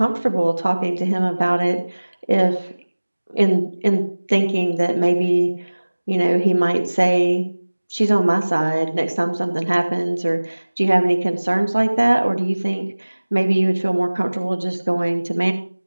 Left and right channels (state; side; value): inverted; both; correlation -1.00